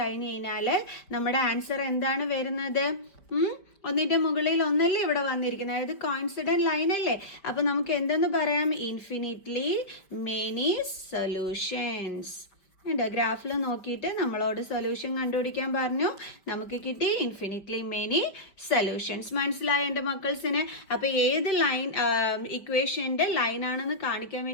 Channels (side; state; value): right; late; 5.3 ms